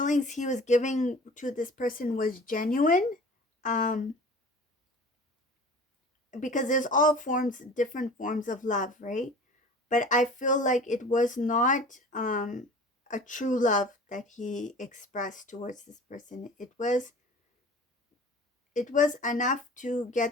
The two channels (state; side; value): normal; both; correlation 0.42